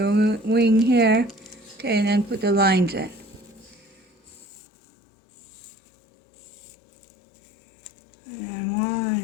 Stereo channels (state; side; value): drops out; right; at 4.4 s